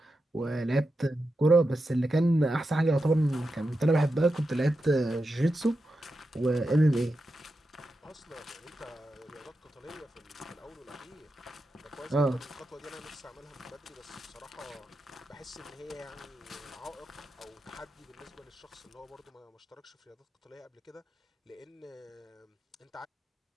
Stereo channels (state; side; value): normal; both; correlation 0.89